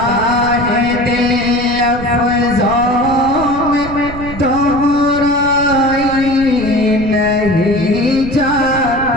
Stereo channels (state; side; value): noise; right; rumble, 12 dB below the sound